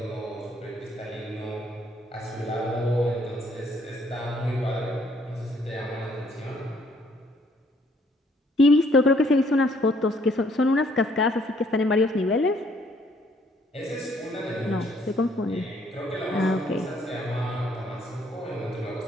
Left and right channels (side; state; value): both; normal; correlation 0.65